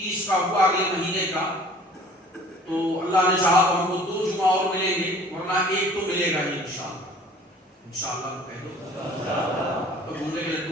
کا ہوا اگلے مہینے کا، تو اللہ نے چاہا تو ہم کو 2 جمعہ اور ملیں گے، ورنہ ایک تو ملے گا ہی انشاءاللہ. انشاءاللہ کہہ دو تو گھومنے کے لڈو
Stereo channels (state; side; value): normal; both; correlation 0.49